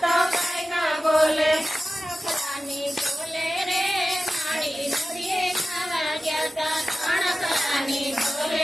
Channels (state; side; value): normal; both; correlation 0.95